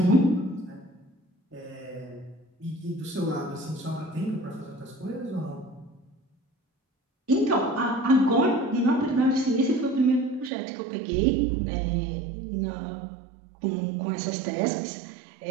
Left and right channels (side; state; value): left; drops out; at 10.5 s